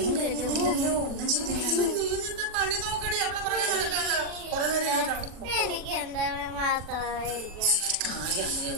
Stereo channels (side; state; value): left; late; 41 ms